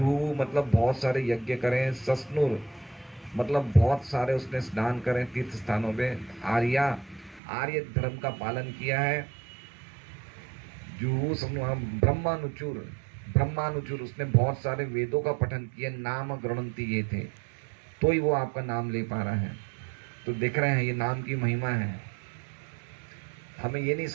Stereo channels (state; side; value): drops out; left; at 7.4 s